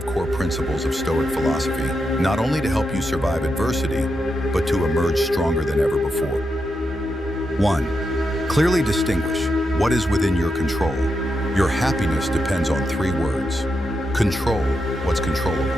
core principles of Stoic philosophy, not only to help you survive adversity, but to emerge stronger than ever before. 1. Clearly distinguish what is within your control. Your happiness depends on 3 words. Control what's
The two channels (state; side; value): normal; both; correlation 0.85